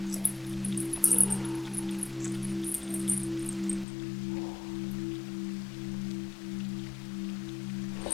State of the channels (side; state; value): right; drops out; at 3.9 s